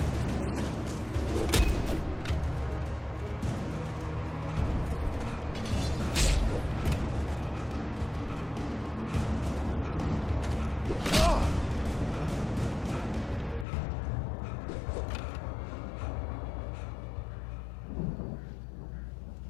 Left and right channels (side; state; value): right; drops out; at 13.7 s